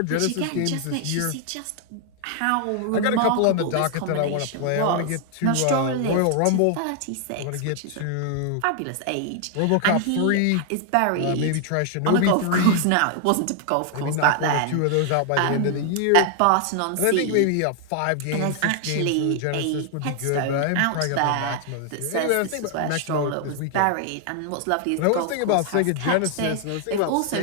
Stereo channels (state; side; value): different; both; correlation 0.00